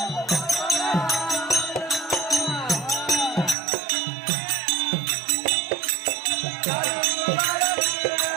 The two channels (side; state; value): left; drops out; at 3.6 s